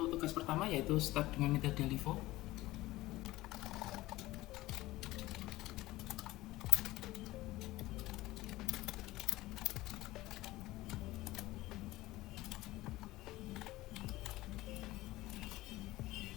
tugas pertama yaitu start dengan metode LIFO.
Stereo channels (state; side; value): quieter; right; 17.8 dB